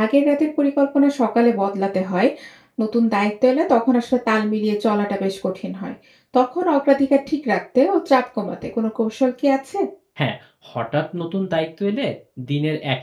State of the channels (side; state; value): both; identical; correlation 1.00